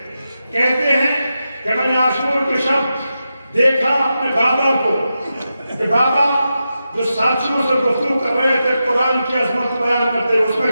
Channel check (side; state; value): both; inverted; correlation -0.89